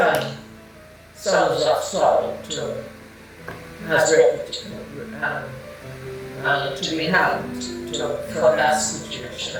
sons of Saul to be hanged for that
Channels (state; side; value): identical; both; correlation 1.00